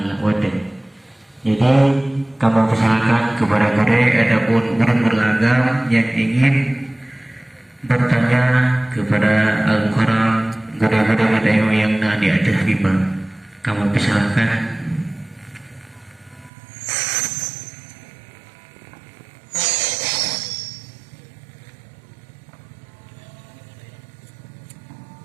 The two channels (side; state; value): left; drops out; at 16.5 s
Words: Jadi kamu persilakan kepada mereka ataupun orang beragam yang ingin bertanya kepada Al-Mukarram guru-guru yang di atas lima. Kamu persilakan.